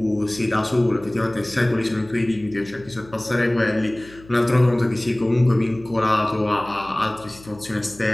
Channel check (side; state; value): left; noise; hum, 22 dB below the sound